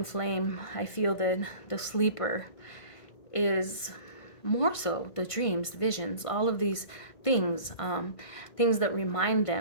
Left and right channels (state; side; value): late; right; 1.5 ms